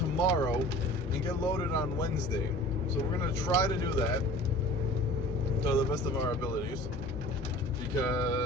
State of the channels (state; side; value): normal; both; correlation 0.43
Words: and get loaded on Wednesday. So we're gonna try to do that to the best of our abilities.